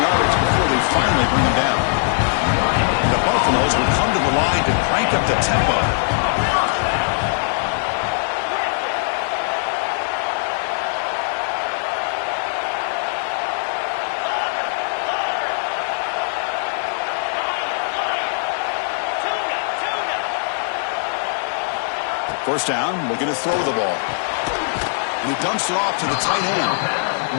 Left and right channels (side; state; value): right; silent; digital silence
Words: yardage before they finally bring him down. The Buffaloes will come to the line to crank up the tempo. First down, looking to throw the ball. And he dumps it off to the tight